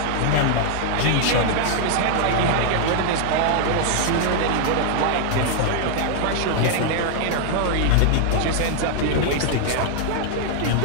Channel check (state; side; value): different; both; correlation 0.00